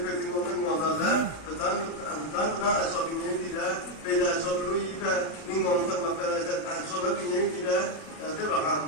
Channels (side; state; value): right; late; 37 ms